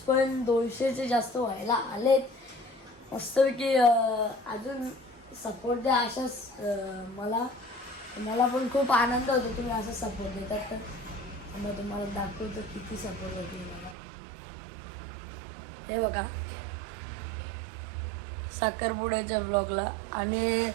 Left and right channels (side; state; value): left; drops out; at 14.0 s